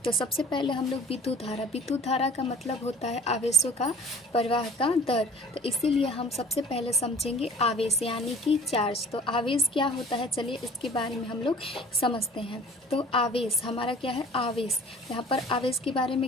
तो सबसे पहले हम लोग विद्युत धारा का मतलब होता है आवेशों का प्रवाह का दर। तो इसीलिए हम सबसे पहले समझेंगे आवेश यानी कि चार्ज। तो आवेश क्या होता है, चलिए इसके बारे में हम लोग समझते हैं। तो आवेश हमारा क्या है, आवेश। यहाँ पर आवेश के बारे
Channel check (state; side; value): normal; both; correlation 0.49